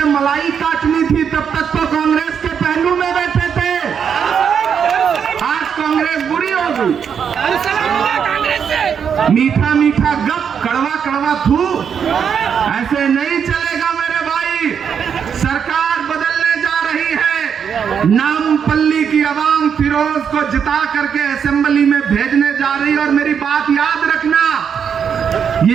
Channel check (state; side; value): quieter; left; 7.4 dB